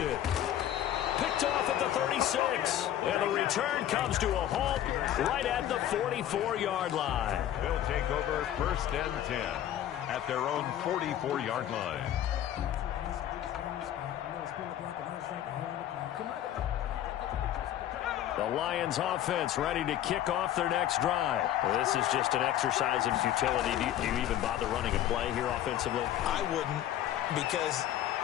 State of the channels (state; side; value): quieter; right; 11.8 dB